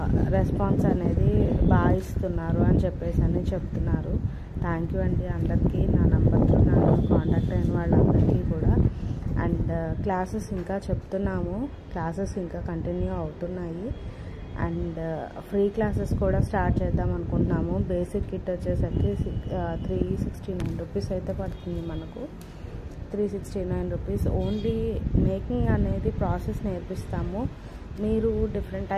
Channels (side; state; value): both; identical; correlation 1.00